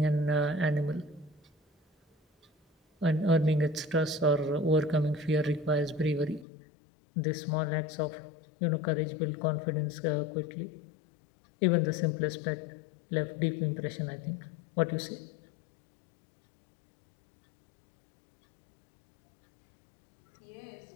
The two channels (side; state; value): right; drops out; at 6.5 s